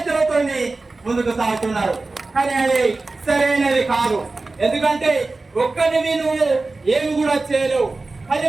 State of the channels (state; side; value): quieter; left; 3.5 dB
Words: ముందుకు సాగుతున్నారు. కానీ అది సరైనది కాదు. ఎందుకంటే ఒక్కరిని నువ్వు ఏమి కూడా చేయలేవు.